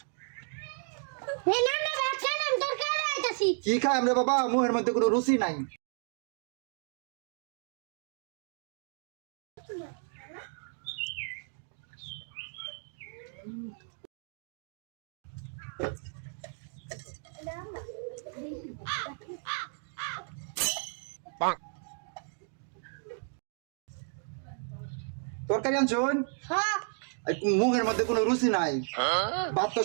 কি খাই আমরা বাবা, মুহের মধ্যে কোনো রুচি নাই। তরকারি আনছুন, মুখের মধ্যে কোনো রুচি নাই, ভাত তো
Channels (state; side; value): silent; left; 56 dB below the other